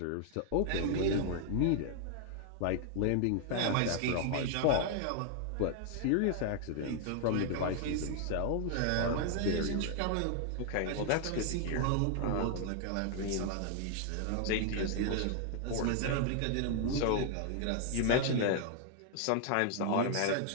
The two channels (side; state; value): both; different; correlation 0.00